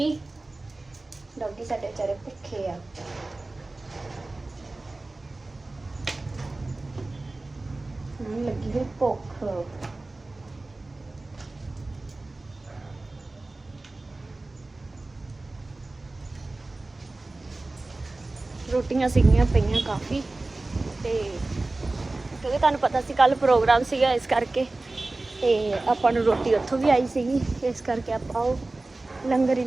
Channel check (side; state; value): left; quieter; 3.1 dB